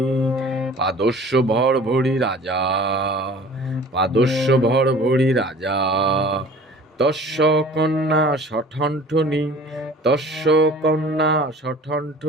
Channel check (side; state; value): both; normal; correlation 0.46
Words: পাদস্য ভরভরি রাজা, পাদস্য ভরভরি রাজা, তস্য কন্যা সঠণ্ঠনি, তস্য কন্যা